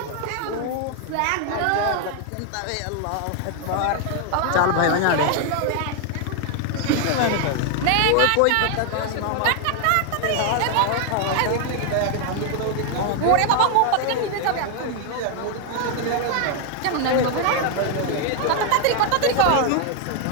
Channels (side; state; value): both; different; correlation 0.01